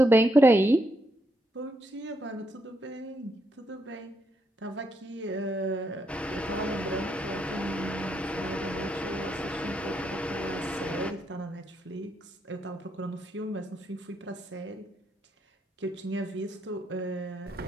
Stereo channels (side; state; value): both; normal; correlation 0.78